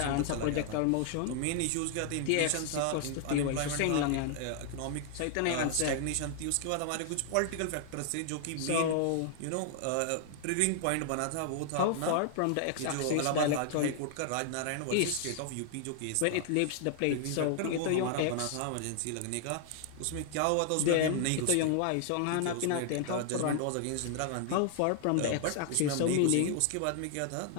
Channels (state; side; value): different; both; correlation 0.00